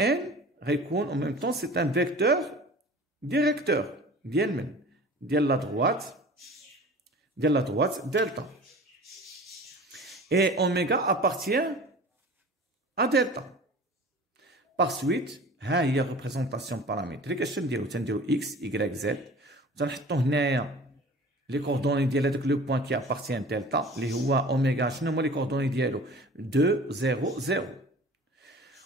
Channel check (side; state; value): both; normal; correlation 0.42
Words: récogne en même temps c'est un vecteur directeur de la droite delta. Et oméga appartient à delta. Par suite ها هي ريبريزونطاسيون بارامتريك اش تنديرو اكس y z وتنحطو هنايا لي كوردوني ديال هذاك لو بوين كي ابارتيان دلتا اللي هو اوميغا شنو هما لي كوردوني ديالو 2 0 0